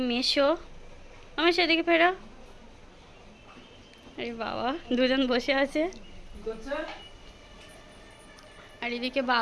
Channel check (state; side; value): identical; both; correlation 1.00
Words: মেশো আমার সেদিকে ফেরো। আরে বাবা, দুজন বসে আছে। আর এদিকে